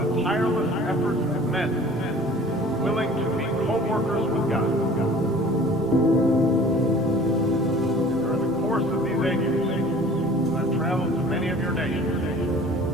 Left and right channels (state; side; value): normal; both; correlation 0.47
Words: the tireless efforts of men willing to be co-workers with God. course of these 8 years, as I've traveled to many of your nations,